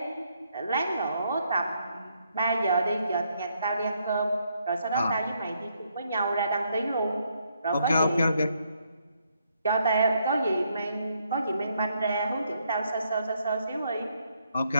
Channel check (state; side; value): inverted; both; correlation -0.74